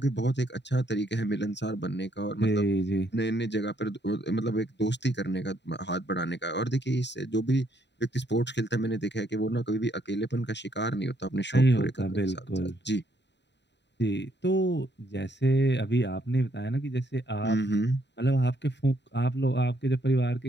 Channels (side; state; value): right; late; 0.51 ms